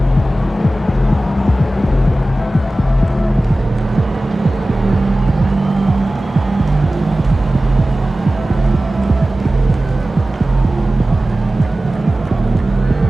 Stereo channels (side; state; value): both; normal; correlation 0.96